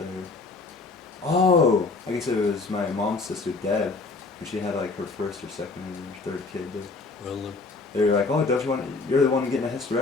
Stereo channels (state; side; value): quieter; right; 3.9 dB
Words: Oh, I guess it was my mom's sister Deb, when she had like her first or second or third kid. Well, They were like, oh, don't you want? You're the one getting a